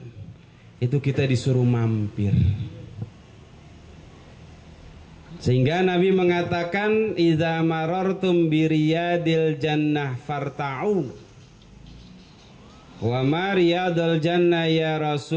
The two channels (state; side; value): identical; both; correlation 1.00